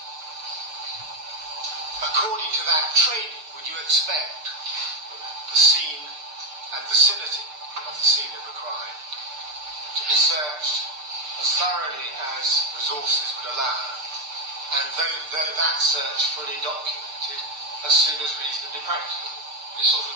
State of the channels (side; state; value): left; late; 6.7 ms